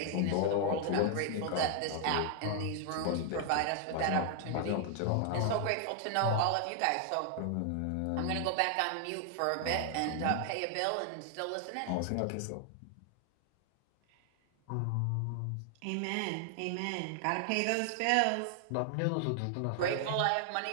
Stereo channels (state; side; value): different; both; correlation 0.00